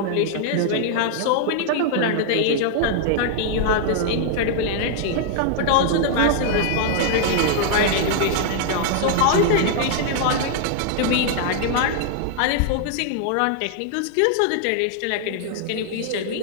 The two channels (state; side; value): different; both; correlation 0.00